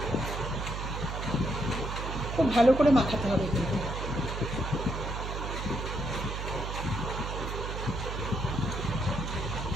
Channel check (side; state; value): right; noise; hum, 4 dB below the sound